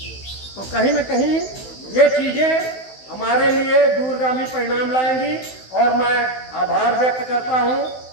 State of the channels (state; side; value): late; right; 16 ms